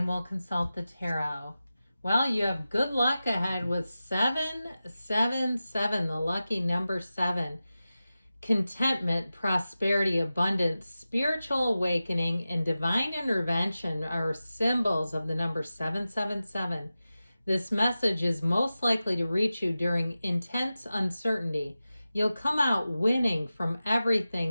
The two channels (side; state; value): both; inverted; correlation -0.94